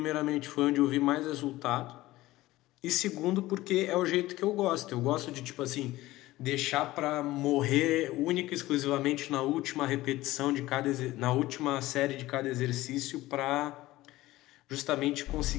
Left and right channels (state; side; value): quieter; right; 17.4 dB